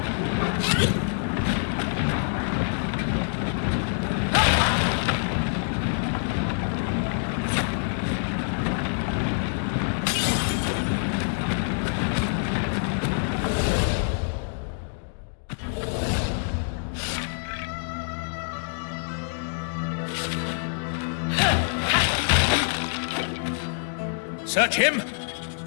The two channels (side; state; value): right; silent; digital silence